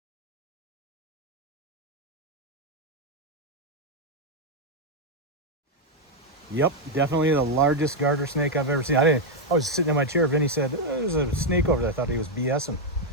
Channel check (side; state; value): both; normal; correlation 0.01